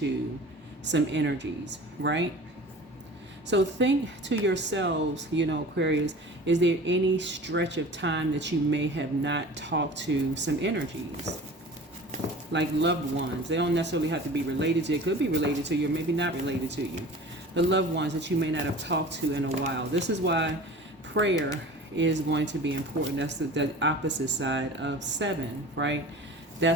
some energies, right? So think to yourselves, you know, Aquarius, is there any stretch of time that you may have not talked to some energies? Like loved ones. They don't necessarily have to be related to you. It could be related to you, or maybe not related to you. The loved ones that you may not have talked to in a while. This is why prayer is going to be important. That's the opposite side of 7, right?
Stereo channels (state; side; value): normal; both; correlation 0.40